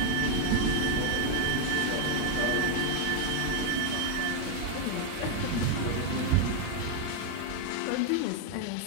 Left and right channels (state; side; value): different; both; correlation 0.00